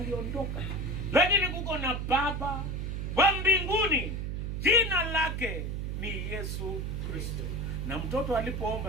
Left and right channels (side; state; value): right; noise; hum, 3 dB below the sound